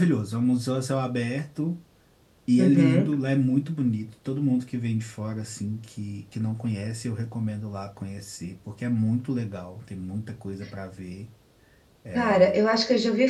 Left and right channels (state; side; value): identical; both; correlation 1.00